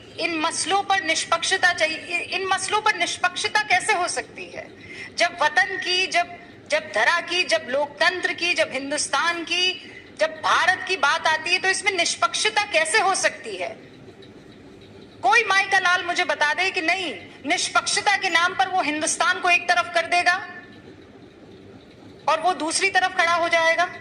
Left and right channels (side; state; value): both; identical; correlation 1.00